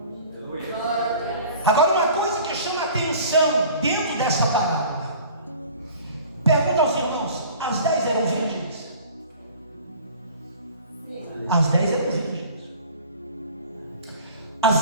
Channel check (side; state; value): both; inverted; correlation -0.46